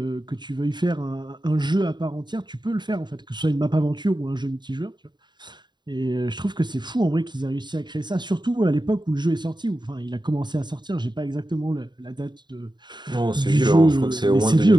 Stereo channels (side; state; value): left; late; 0.21 ms